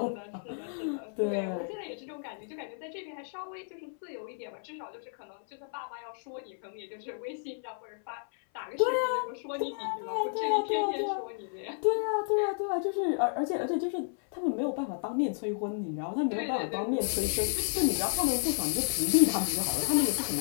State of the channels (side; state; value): right; silent; 57 dB below the other